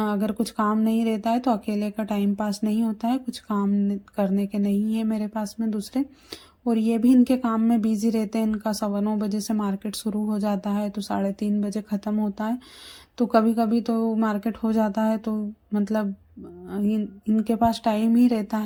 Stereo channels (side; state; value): both; identical; correlation 1.00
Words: कुछ काम नहीं रहता है तो अकेले का टाइम पास नहीं होता है। कुछ काम करने के नहीं है मेरे पास में दूसरे, और ये भी इनके काम में बिजी रहते हैं। इनका 9:15 से मार्केट शुरू हो जाता है तो 3:30 बजे ख़त्म होता है, तो कभी कभी तो मार्केट हो जाता है तो मतलब इनके पास टाइम ही रहता